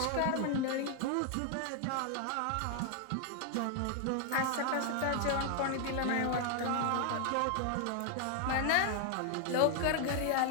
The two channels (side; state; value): both; different; correlation 0.00